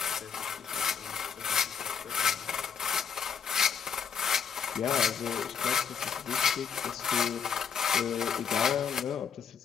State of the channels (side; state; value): right; quieter; 7.0 dB